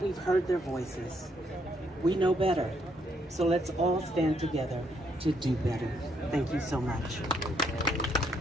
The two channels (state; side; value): normal; both; correlation 0.73